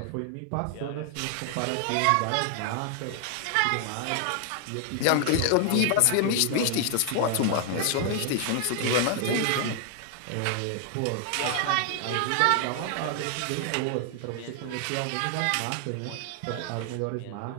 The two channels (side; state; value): both; different; correlation 0.00